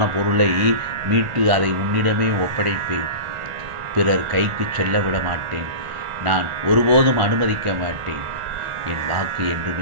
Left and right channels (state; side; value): late; left; 1.4 ms